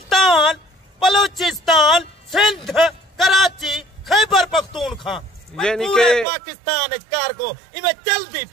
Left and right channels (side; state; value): left; drops out; at 6.2 s